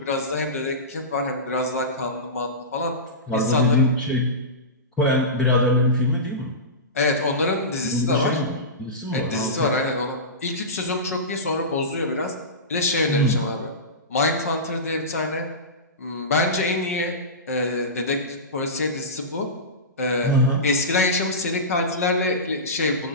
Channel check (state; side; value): normal; both; correlation -0.20